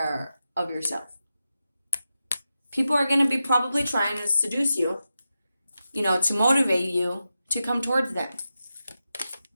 of yourself. People are going to be probably trying to seduce you, to motivate you to come towards them.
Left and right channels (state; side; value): inverted; both; correlation -0.91